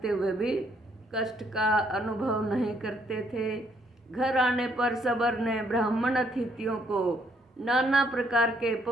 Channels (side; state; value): both; normal; correlation 0.70